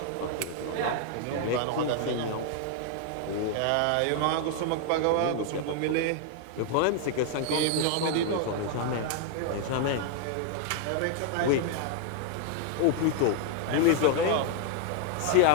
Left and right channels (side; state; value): both; different; correlation 0.00